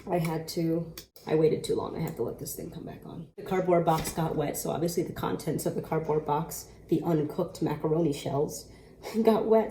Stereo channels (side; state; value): both; identical; correlation 1.00